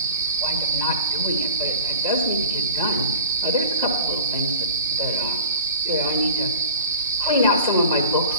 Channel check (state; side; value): inverted; both; correlation -0.40